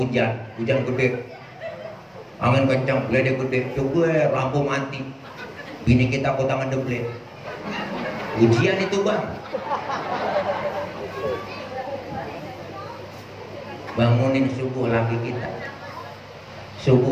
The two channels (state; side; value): identical; both; correlation 1.00